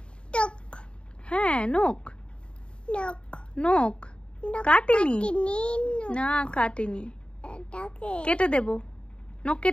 টক হ্যাঁ নখ, নক নখ কাটেনি। কাটিনি। না কাটেনি, এটাকে কেটে দেব, নখ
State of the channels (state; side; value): late; right; 0.054 ms